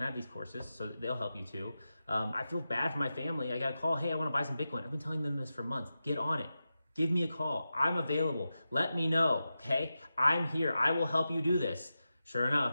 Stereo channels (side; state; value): both; inverted; correlation -0.92